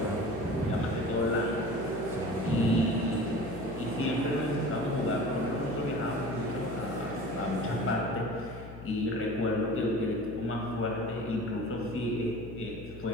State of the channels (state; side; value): noise; left; hum, 14 dB below the sound